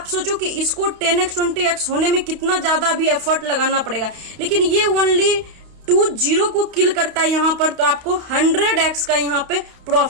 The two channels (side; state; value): left; late; 32 ms